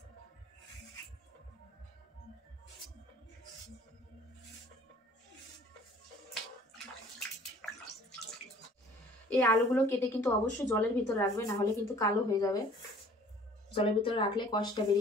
এই আলুগুলো কেটে কিন্তু অবশ্যই জলের ভিতর রাখবে, না হলে কিন্তু কালো হয়ে যাবে। জলের ভিতরে রাখলে কষটা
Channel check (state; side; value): normal; both; correlation 0.53